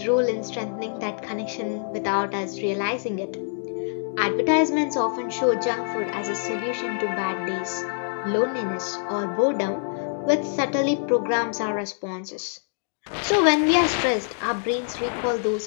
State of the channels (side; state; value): right; silent; digital silence